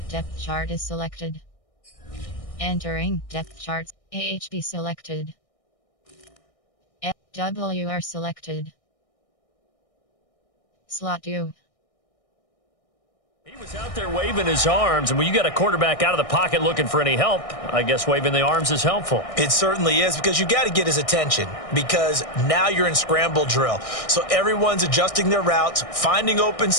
Depth chart is selected. Entering depth charts. AHB selected. FWR selected. Slot 2. He was out there waving his arms, and when you got a quarterback out of the pocket looking for any help, I guess waving the arms is helpful. It certainly is, because you got to get his attention, because now you're in scramble drill. So everyone's adjusting their routes, finding open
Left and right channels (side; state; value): right; late; 1.6 ms